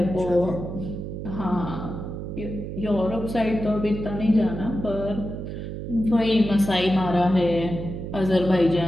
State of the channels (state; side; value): noise; right; hum, 7 dB below the sound